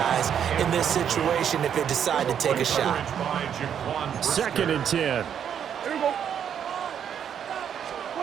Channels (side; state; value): left; quieter; 8.6 dB